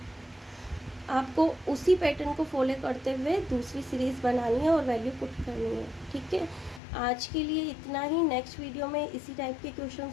आपको उसी पैटर्न को फॉलो करते हुए दूसरी सीरीज बनानी है और वैल्यू पुट करनी है, ठीक है। आज के लिए इतना ही। नेक्स्ट वीडियो में इसी टाइप के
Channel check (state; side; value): drops out; right; at 6.8 s